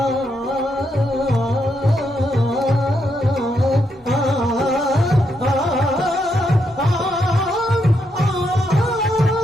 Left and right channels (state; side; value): normal; both; correlation 0.79